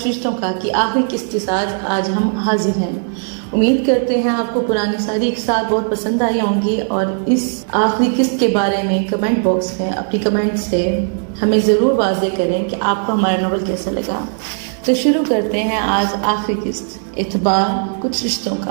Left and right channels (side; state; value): left; silent; 61 dB below the other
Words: رشتوں کا کی آخری قسط کے ساتھ آج ہم حاضر ہیں. امید کرتے ہیں آپ کو پرانی ساری قصات بہت پسند آئی ہوں گی اور اس آخری قسط کے بارے میں کمنٹ باکس میں اپنی کمنٹ سے ہمیں ضرور واضح کریں کہ آپ کو ہمارا ناول کیسا لگا. تو شروع کرتے ہیں آج آخری قسط اعتبار کچھ رشتوں